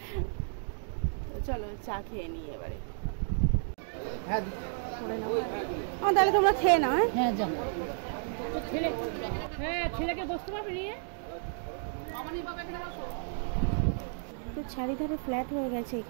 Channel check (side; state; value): left; silent; digital silence